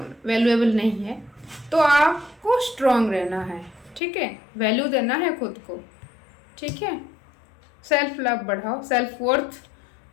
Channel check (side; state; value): right; drops out; at 4.0 s